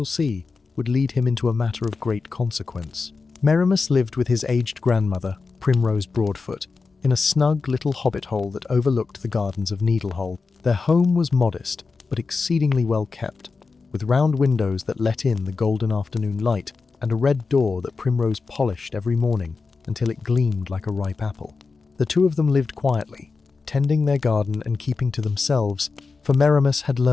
see, would lead him into a matter of great consequence. Merimas lived with his aged grandmother, Merimas Broadfoot, in a snug little hobbit hole that overlooked the gardens of Needlehole. Their home was modest, but exceedingly well kept, with round windows that let in the golden afternoon light and a red door that Primrose polished every morning until it gleamed like a ripe apple. The two of them lived quietly, tending their garden and keeping to themselves, for Merimas had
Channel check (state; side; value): quieter; right; 4.5 dB